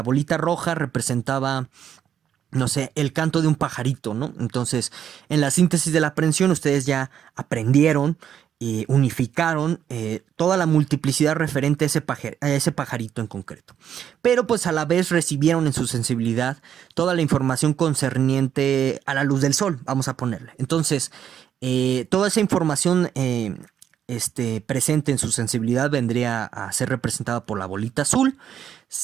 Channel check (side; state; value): left; quieter; 9.3 dB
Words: bolita roja representaba, no sé, el canto de un pajarito, ¿no? Entonces, en la síntesis de la aprehensión, ustedes ya aprendieron y unificaron toda la multiplicidad referente a ese pajarito en concreto. Pero pues a la vez recibieron en su sensibilidad toda la información concerniente a la luz del sol, vamos a ponerle. Entonces, toda esa información presente en su sensibilidad vendría a ser representada por la bolita azul.